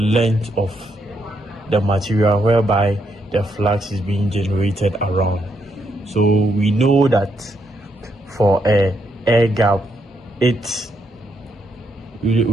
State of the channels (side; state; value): both; normal; correlation 0.77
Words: of the material whereby the flux is being generated around. So we know that for a air gap, its